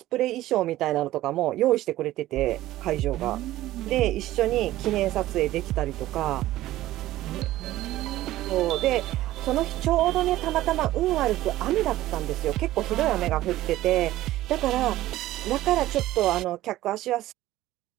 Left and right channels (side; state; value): left; quieter; 15.4 dB